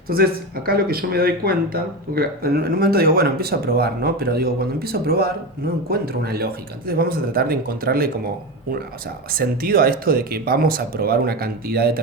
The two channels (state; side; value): normal; both; correlation 0.20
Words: Entonces, acá lo que yo me doy cuenta, porque en un momento digo, bueno, empiezo a probar, ¿no? Pero digo, cuando empiezo a probar, no encuentro una lógica. Entonces vamos a tratar de encontrarle como sentido a esto de que vamos a probar una cantidad